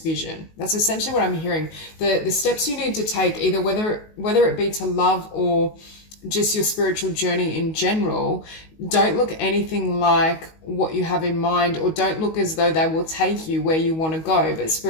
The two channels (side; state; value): right; late; 19 ms